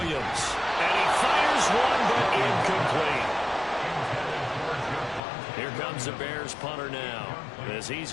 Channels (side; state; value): right; drops out; at 5.2 s